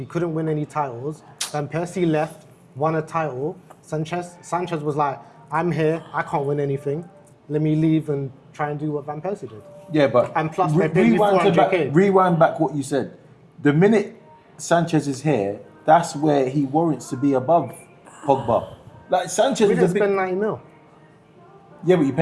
couldn't win any titles. Van Persie left, won a title. Sanchez was like, I'm here, I can't win anything. Let me leave and try and do what Van Persie did. Yeah, but And plus they paid me 400k. Rewind back what you said. The minute Sanchez is here, that's where he warrants to be above Pogba. Like Sanchez We is didn't a big, spend 90 mil, yeah, but you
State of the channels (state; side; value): identical; both; correlation 1.00